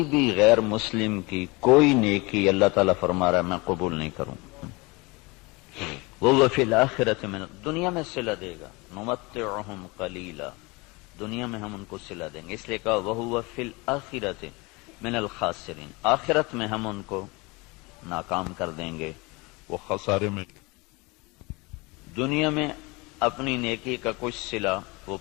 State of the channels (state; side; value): quieter; right; 25.7 dB